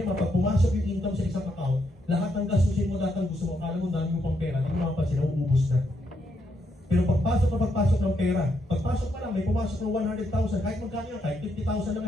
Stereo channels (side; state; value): both; normal; correlation 0.78